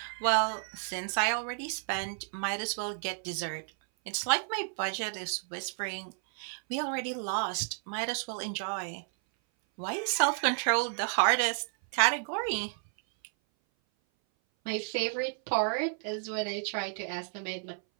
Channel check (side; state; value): left; silent; 57 dB below the other